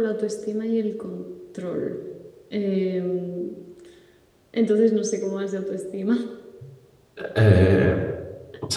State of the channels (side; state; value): both; identical; correlation 1.00